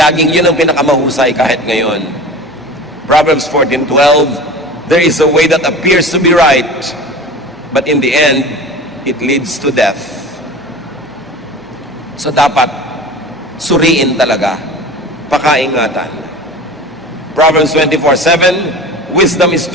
yun ang pinakamahusay kahit ngayon. Proverbs 14:12, there is a way that appears to be right, but in the end, it leads to death. So dapat, suriin talaga, pakaingatan. Proverbs 24:7, wisdom is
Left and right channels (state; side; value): noise; left; hum, 26 dB below the sound